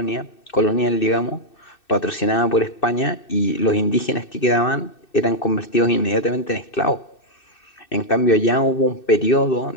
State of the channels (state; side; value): late; right; 2.6 ms